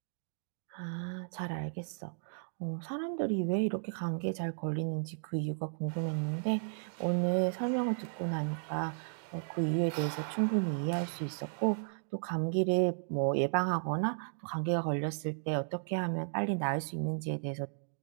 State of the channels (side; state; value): left; silent; digital silence